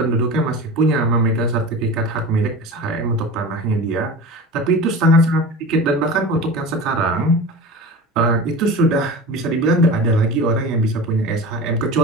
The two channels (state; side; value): normal; both; correlation 0.32